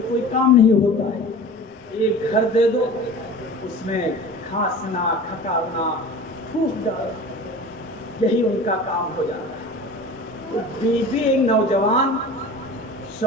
کوئی کام نہیں ہوتا ہے۔ ایک گھر دے دو، اس میں کھانسنا، کھکارنا، پھوک ڈالنا، یہی ان کا کام ہو جاتا ہے۔ تو بیوی ایک نوجوان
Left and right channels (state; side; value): normal; both; correlation 0.38